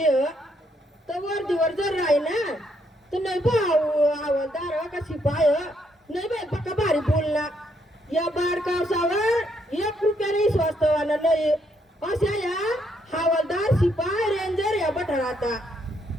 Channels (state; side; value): normal; both; correlation 0.74